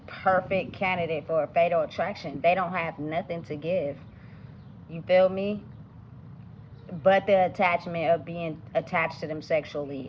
perfect candidate for a fatal attraction. They don't have nothing to give. You feel me? But the attachment of being attached to them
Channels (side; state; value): both; identical; correlation 1.00